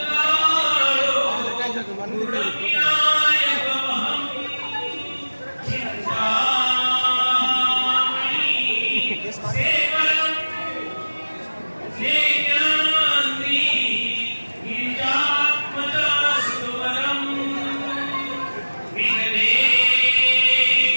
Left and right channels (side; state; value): both; inverted; correlation -1.00